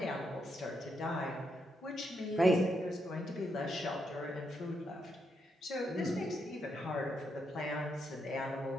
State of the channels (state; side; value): normal; both; correlation 0.80